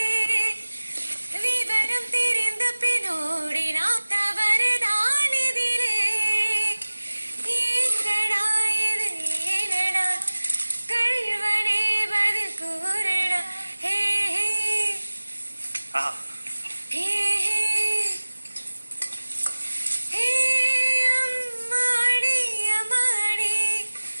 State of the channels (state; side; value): inverted; both; correlation -1.00